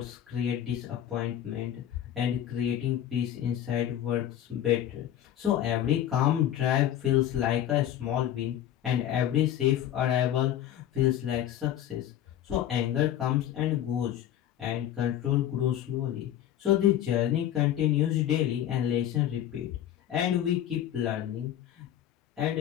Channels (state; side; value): quieter; right; 11.3 dB